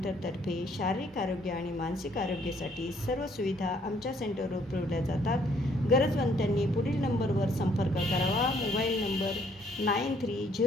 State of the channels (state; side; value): normal; both; correlation 0.65